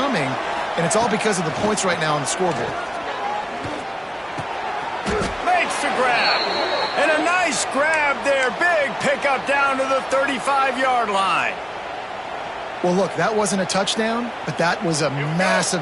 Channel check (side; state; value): both; identical; correlation 1.00